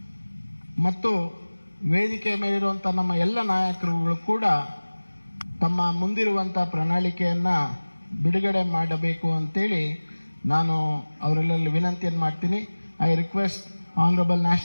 ಮತ್ತು ವೇದಿಕೆ ಮೇಲಿರುವಂಥ ನಮ್ಮ ಎಲ್ಲ ನಾಯಕರುಗಳು ಕೂಡ ತಮ್ಮ ಮುಂದಿರುವಂಥ ಪ್ರಣಾಳಿಕೆಯನ್ನ ಬಿಡುಗಡೆ ಮಾಡಬೇಕು ಅಂತೇಳಿ ನಾನು ಅವರೆಲ್ಲರಲ್ಲಿ ವಿನಂತಿಯನ್ನು ಮಾಡ್ತೀನಿ. I request Honorable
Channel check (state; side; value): inverted; both; correlation -1.00